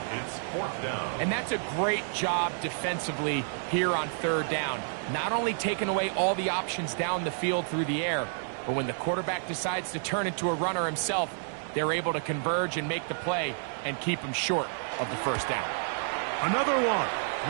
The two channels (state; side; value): silent; left; digital silence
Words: It's fourth down. And that's a great job defensively here on third down. Not only taking away all the options down the field through the air, but when the quarterback decides to turn into a runner himself, they're able to converge and make the play and keep him short of the first down. Another one